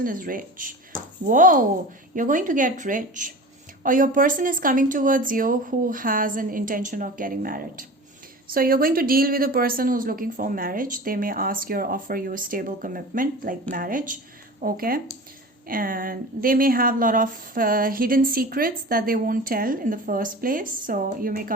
is rich. Whoa, you're going to get rich. Or your person is coming towards you who has an intention of getting married. So you're going to deal with a person who's looking for marriage. They may ask you or offer you a stable commitment like marriage, okay? And they may have a lot of hidden secrets that they won't tell in the first place. So you may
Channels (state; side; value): normal; both; correlation 0.35